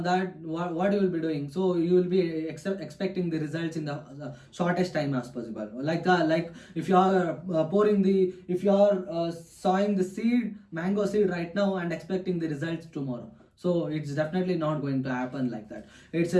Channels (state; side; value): identical; both; correlation 1.00